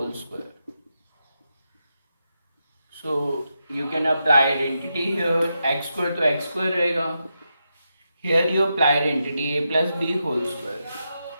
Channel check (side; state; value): both; inverted; correlation -0.86